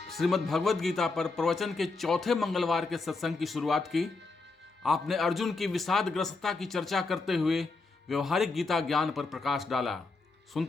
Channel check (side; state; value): right; quieter; 3.8 dB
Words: श्रीमद् भगवद गीता पर प्रवचन के चौथे मंगलवार के सत्संग की शुरुआत की। आपने अर्जुन की विषादग्रस्तता की चर्चा करते हुए व्यवहारिक गीता ज्ञान पर प्रकाश डाला।